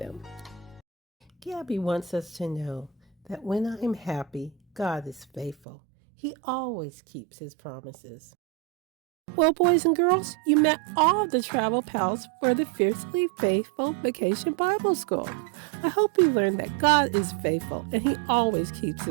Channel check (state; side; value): drops out; left; at 5.6 s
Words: Gabby wants us to know that when I am happy, God is faithful. He always keeps his promises. Well, boys and girls, you met all the travel pals for the Fiercely Faithful Vacation Bible School. I hope you learned that God is faithful and he always keeps